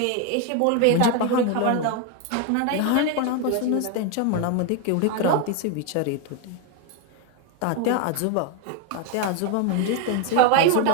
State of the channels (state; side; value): different; both; correlation 0.01